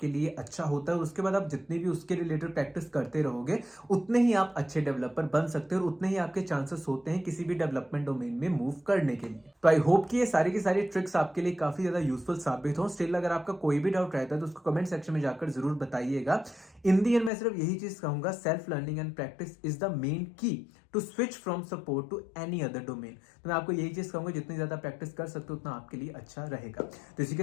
लिए अच्छा होता है। उसके बाद आप जितनी भी उसके रिलेटेड प्रैक्टिस करते रहोगे उतने ही आप अच्छे डेवलपर बन सकते हो और उतने ही आपके चांसेस होते हैं किसी भी डेवलपमेंट डोमेन में मूव करने के लिए। तो आई होप कि ये सारी की सारी ट्रिक्स आपके लिए काफी ज्यादा यूजफुल साबित हो। स्टिल अगर आपका कोई भी डाउट रहता है तो उसको कमेंट सेक्शन में जाकर जरूर बताइएगा। इन दी एंड मैं सिर्फ यही चीज कहूंगा, self learning and practice is the main key to switch from support to any other domain. तो मैं आपको यही चीज कहूंगा, जितनी ज्यादा प्रैक्टिस कर सकते हो उतना आपके लिए अच्छा रहेगा। तो इसी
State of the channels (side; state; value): right; drops out; at 17.3 s